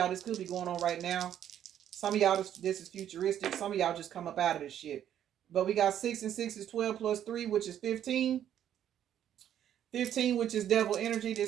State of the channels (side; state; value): left; quieter; 10.4 dB